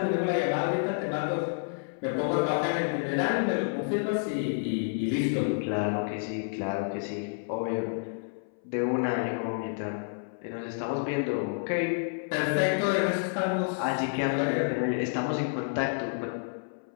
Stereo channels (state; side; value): silent; right; 58 dB below the other